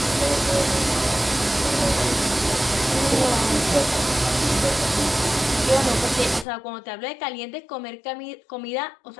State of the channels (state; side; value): drops out; right; at 6.5 s